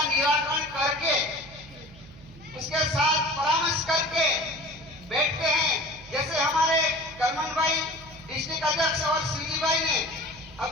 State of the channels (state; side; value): noise; right; hum, 21 dB below the sound